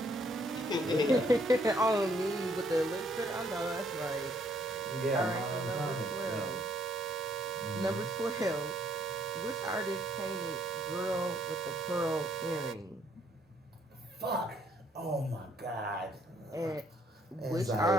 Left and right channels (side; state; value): both; normal; correlation 0.67